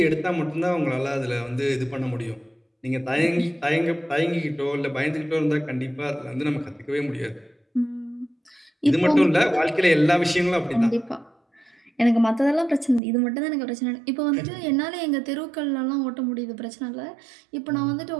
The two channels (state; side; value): drops out; left; at 13.0 s